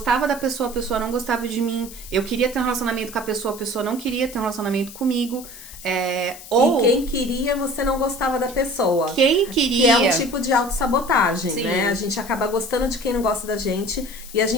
da pessoa, a pessoa não gostava de mim. Eu queria ter um relacionamento com a pessoa não queria ter um relacionamento comigo. E quem queria, você não gostava da pessoa. Quem queria. Que é um tipo de autossabotagem, Sim. né? A gente acaba gostando de quem não gosta da gente e a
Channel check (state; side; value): noise; left; hiss, 15 dB below the sound